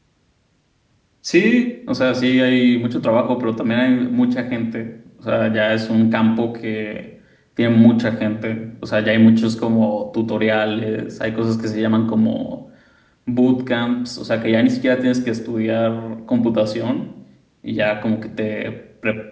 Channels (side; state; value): both; identical; correlation 1.00